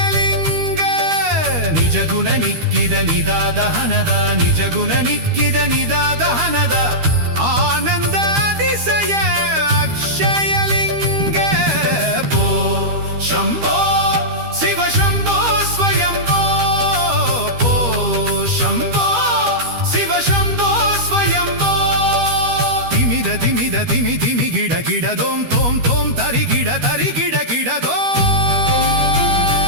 ನಿಜಗುಣ ನಿಕ್ಕಿದ ನಿದಾದಹನದ ನಿಜಗುಣ ನಿಕ್ಕಿದ ನಿದಾದಹನದ ಆನಂದ ಅತಿಶಯ ಅಕ್ಷಯಲಿಂಗ ಓ ಶಂಭೋ ಶಿವ ಶಂಭೋ ಸ್ವಯಂಭೋ ಓ ಶಂಭೋ ಶಿವ ಶಂಭೋ ಸ್ವಯಂಭೋ ತಿಮಿದ ತಿಮಿದ ತಿಮಿ ತಿಮಿ ಗಿಡ ಗಿಡ ದೋಂ ತೋಂ ತೋಂ ತರಿ ಗಿಡ ಗಿಡ ದೋ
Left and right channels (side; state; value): left; late; 13 ms